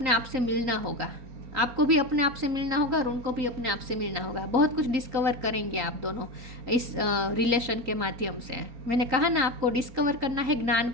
आप से मिलना होगा। आपको भी अपने आप से मिलना होगा और उनको भी अपने आप से मिलना होगा। बहुत कुछ डिस्कवर करेंगे आप दोनों इस रिलेशन के माध्यम से। मैंने कहा ना, आपको डिस्कवर करना है, ज्ञान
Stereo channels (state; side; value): late; left; 3.9 ms